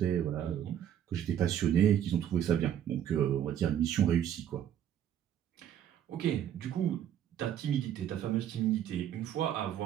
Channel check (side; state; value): left; quieter; 10.2 dB